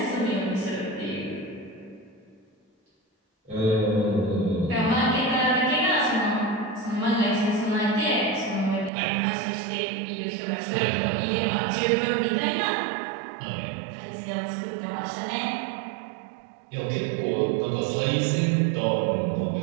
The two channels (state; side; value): drops out; left; at 8.9 s